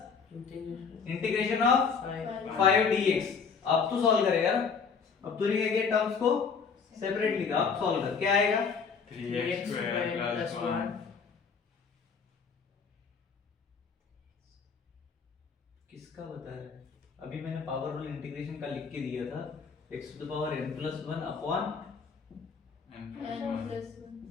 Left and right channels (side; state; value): right; quieter; 5.7 dB